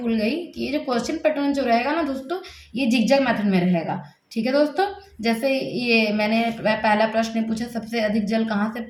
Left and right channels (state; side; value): identical; both; correlation 1.00